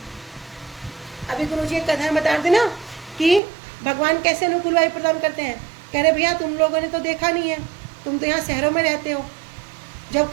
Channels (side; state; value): left; drops out; at 3.4 s